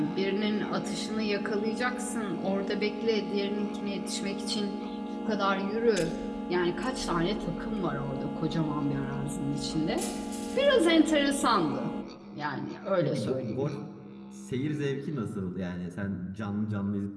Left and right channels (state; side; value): identical; both; correlation 1.00